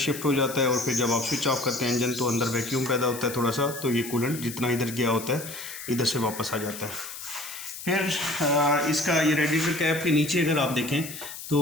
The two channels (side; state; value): left; noise; hiss, 11 dB below the sound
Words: हो जाता है और फिर जब आप स्विच ऑफ करते हैं इंजन तो अंदर वैक्यूम पैदा होता है थोड़ा सा, तो ये कूलेंट जितना इधर गया होता है इधर से वापस आ जाता है। फिर इसका ये रेडिएटर कैप के नीचे अगर आप देखें